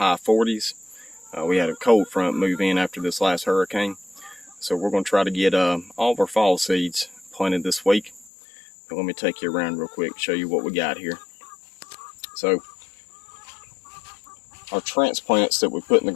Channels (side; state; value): right; drops out; at 8.3 s